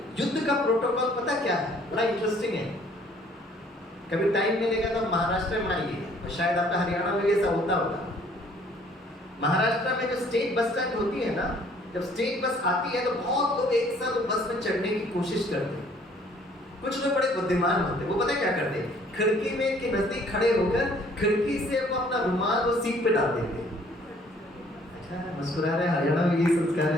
युद्ध का प्रोटोकॉल पता क्या है? बड़ा इंटरेस्टिंग है। कभी टाइम मिलेगा तो महाराष्ट्र में आइए, और शायद आपका हरियाणा में ऐसा होता होगा। महाराष्ट्र में जो स्टेट बस स्टैंड होती है ना, जब स्टेट बस आती है तो बहुत लोग एक साथ बस में चढ़ने की कोशिश करते हैं। कुछ लोग बड़े बुद्धिमान होते हैं, वो पता क्या करते हैं? खिड़की में के नजदीक खड़े होकर खिड़की से वो अपना रुमाल वो सीट पे डाल देते हैं। अच्छा, मुस्कुरा रहे, हरियाणा में ये संस्कार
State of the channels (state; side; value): normal; both; correlation 0.59